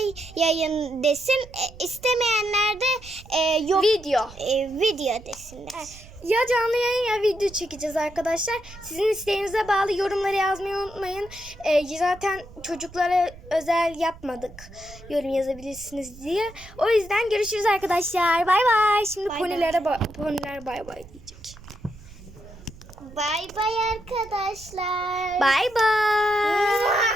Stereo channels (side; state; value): right; noise; rumble, 19 dB below the sound